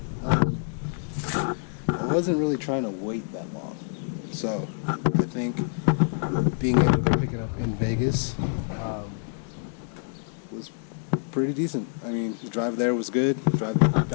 I wasn't really trying to wait that long. So I think being able to pick it up in Vegas was pretty decent. I mean, the drive there was good, the drive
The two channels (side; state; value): right; silent; digital silence